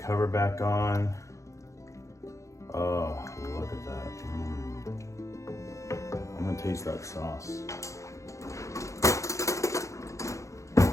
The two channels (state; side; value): late; right; 0.15 ms